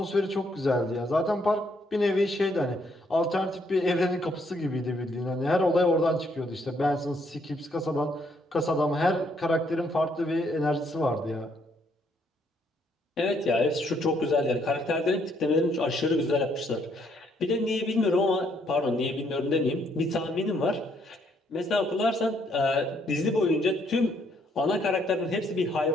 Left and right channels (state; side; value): normal; both; correlation 0.70